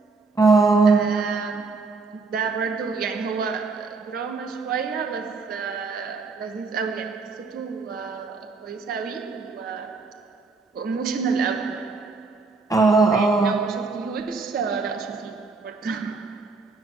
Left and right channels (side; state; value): left; quieter; 4.1 dB